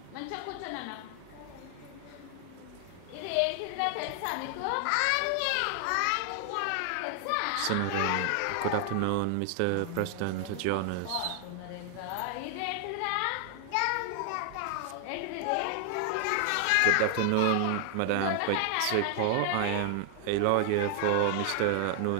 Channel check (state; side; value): different; both; correlation 0.00